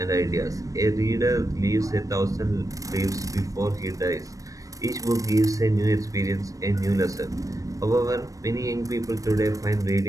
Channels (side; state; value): left; late; 0.16 ms